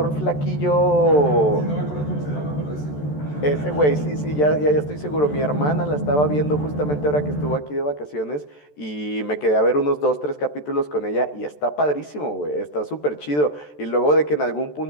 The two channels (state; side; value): late; right; 14 ms